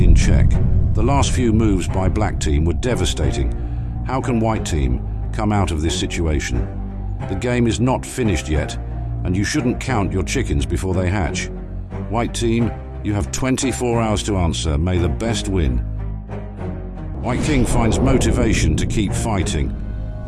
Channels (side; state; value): both; identical; correlation 1.00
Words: check. The last few moves by black team were devastating. How can white team come out of this situation? The game is not finished yet, and you shouldn't count your chickens before they hatch. White team, you have 24 hours to answer. May the best win. White king finds motivation to keep fighting.